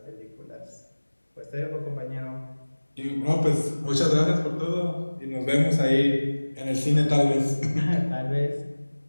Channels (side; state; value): both; inverted; correlation -1.00